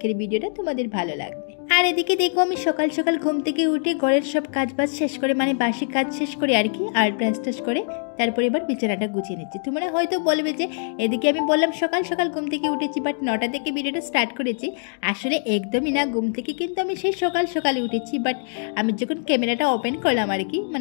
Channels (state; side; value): silent; right; 63 dB below the other